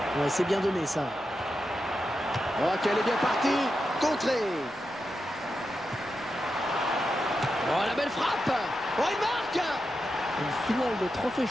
Ouais, c'est bien donné ça. Oh, qu'elle est bien partie. Contrée. Oh, la belle frappe. Oh, il marque. Une finale de trophée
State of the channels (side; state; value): both; normal; correlation 0.88